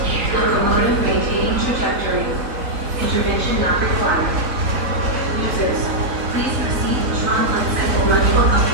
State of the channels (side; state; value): left; late; 3.9 ms